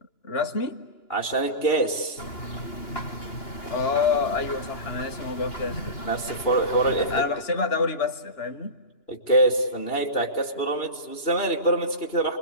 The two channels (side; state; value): right; late; 2.9 ms